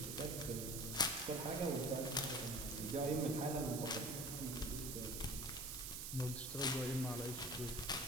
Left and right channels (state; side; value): noise; right; hiss, 5 dB below the sound